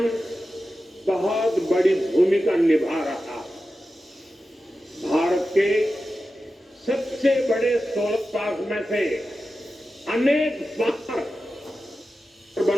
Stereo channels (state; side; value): normal; both; correlation 0.92